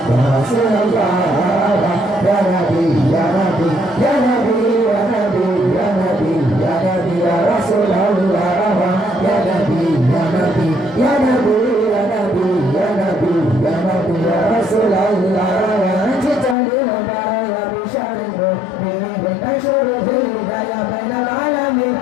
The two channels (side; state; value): right; drops out; at 16.6 s